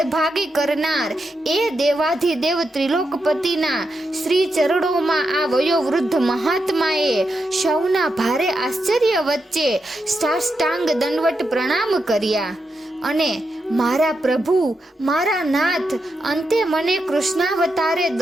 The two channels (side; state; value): both; normal; correlation 0.85